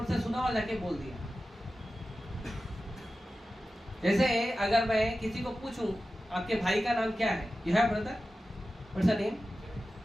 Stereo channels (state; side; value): normal; both; correlation 0.94